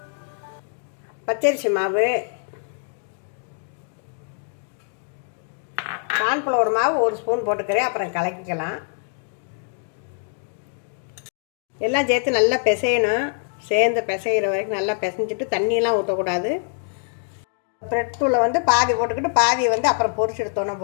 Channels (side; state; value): right; silent; 62 dB below the other